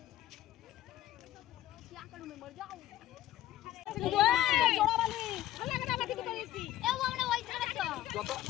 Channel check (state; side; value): quieter; right; 13.7 dB